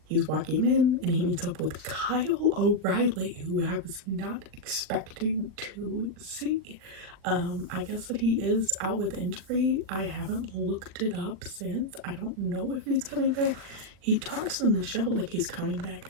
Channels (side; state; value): left; late; 40 ms